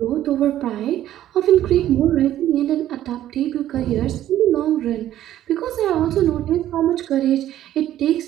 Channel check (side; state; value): left; quieter; 12.6 dB